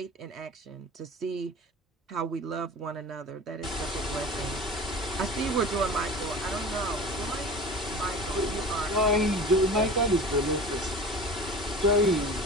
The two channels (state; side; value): normal; both; correlation 0.37